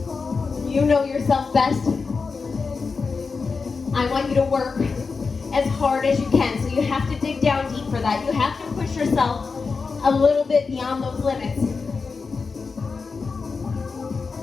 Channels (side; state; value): right; quieter; 4.7 dB